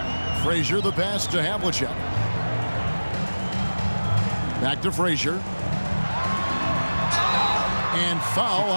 Frazier the pass to Havlicek. Back to Frazier. And foul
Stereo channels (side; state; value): both; inverted; correlation -1.00